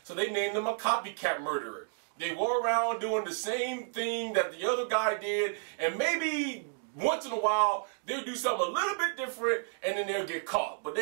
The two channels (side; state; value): left; silent; digital silence